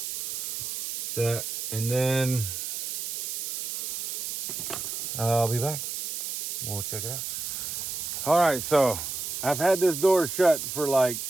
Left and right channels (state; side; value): noise; right; hiss, 5 dB below the sound